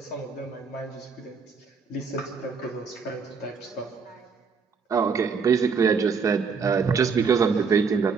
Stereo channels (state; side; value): quieter; left; 5.5 dB